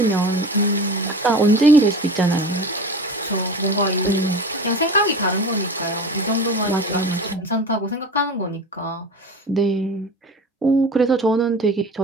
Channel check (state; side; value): normal; both; correlation 0.34